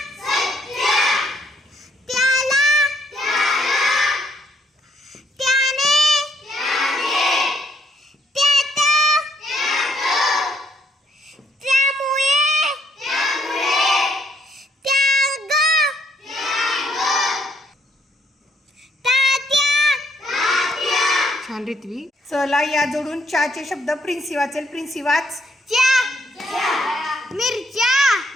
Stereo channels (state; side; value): normal; both; correlation 0.70